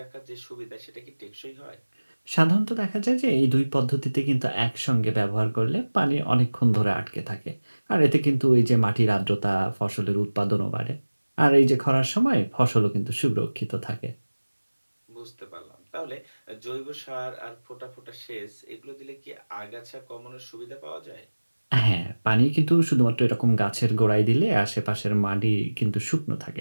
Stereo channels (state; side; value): inverted; both; correlation -1.00